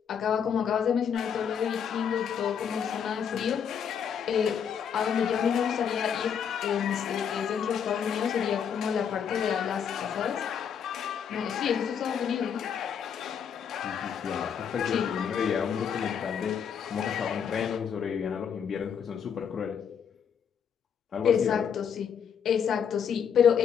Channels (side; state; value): right; quieter; 7.6 dB